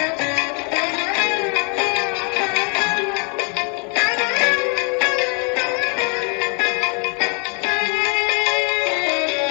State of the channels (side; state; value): right; quieter; 34.2 dB